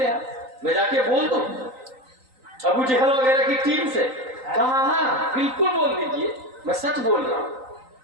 ہیں، میں جا کے بول دوں ابو جہل وغیرہ کی ٹیم سے. کہا ہاں بالکل بول دیجئے، میں سچ بول رہا ہوں.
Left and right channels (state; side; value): late; left; 3.9 ms